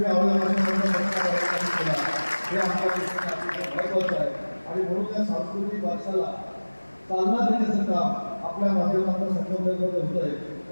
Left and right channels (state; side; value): inverted; both; correlation -1.00